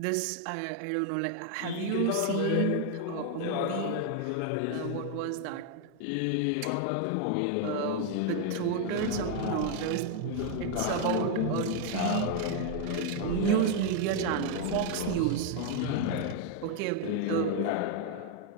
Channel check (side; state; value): both; different; correlation 0.00